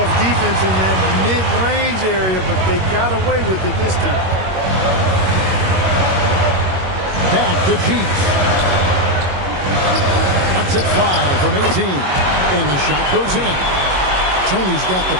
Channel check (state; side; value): late; left; 21 ms